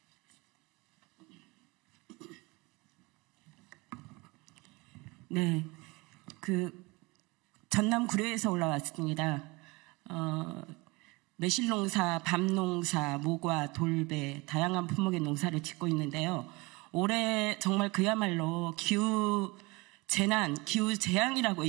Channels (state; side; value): quieter; left; 24.8 dB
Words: 네, 전남 구례에서 올라왔습니다. 매실농사, 밤농사, 모과, 돌배 다양한 품목의 농사를 짓고 있는데요. 올해 정말 그야말로 기후재난, 기후재앙이라고